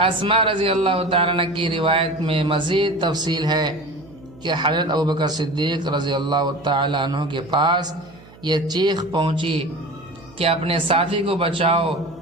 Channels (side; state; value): right; noise; hum, 23 dB below the sound